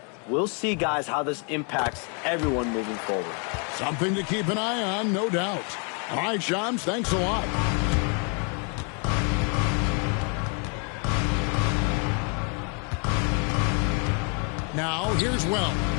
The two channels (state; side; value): quieter; right; 37.7 dB